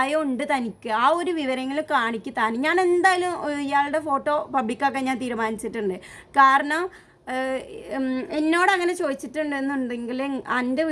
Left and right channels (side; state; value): both; identical; correlation 1.00